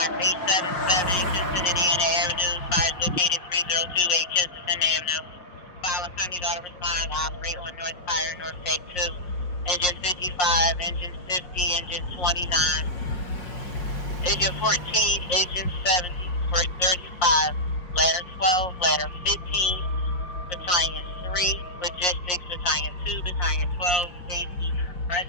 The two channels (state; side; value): late; right; 6.1 ms